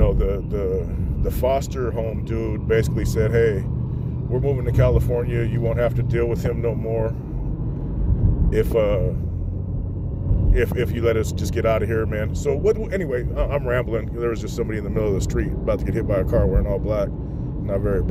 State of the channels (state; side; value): identical; both; correlation 1.00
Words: the foster home dude basically said, hey, we're moving to California. You won't have to deal with him no more if you let us just get out of here, man. So anyway, I'm rambling. There was just somebody in the middle of the street about to get hit by a car wearing all black. Not very